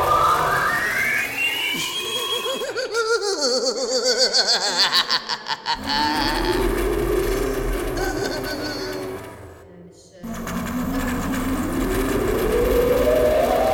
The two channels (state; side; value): identical; both; correlation 1.00